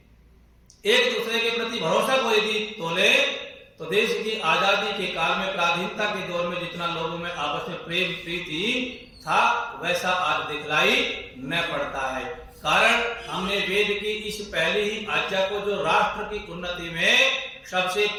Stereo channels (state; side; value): identical; both; correlation 1.00